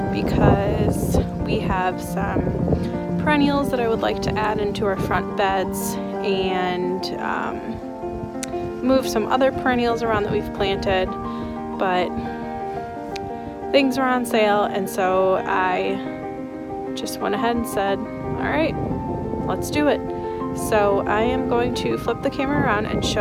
because we have some perennials that I would like to add into our front beds and move some other perennials around that we've planted, but things are on sale, and so I just went ahead and said, all right, let's do it. So I am going to flip the camera around and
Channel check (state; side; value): identical; both; correlation 1.00